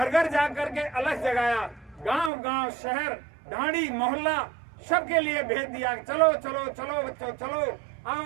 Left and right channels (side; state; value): left; drops out; at 2.3 s